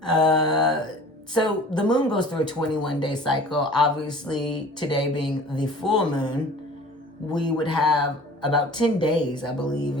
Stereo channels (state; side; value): normal; both; correlation 0.44